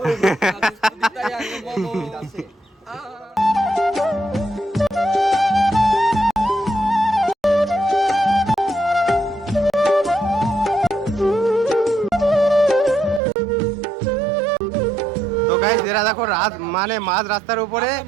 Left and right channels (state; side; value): drops out; left; at 13.2 s